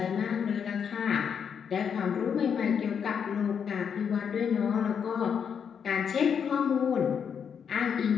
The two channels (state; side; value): quieter; right; 7.3 dB